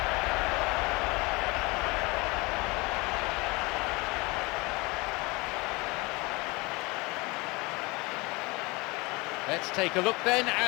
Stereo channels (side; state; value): right; quieter; 25.1 dB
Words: Let's take a look then